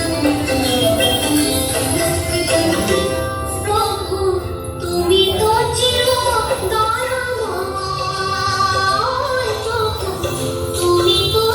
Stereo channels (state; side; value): identical; both; correlation 1.00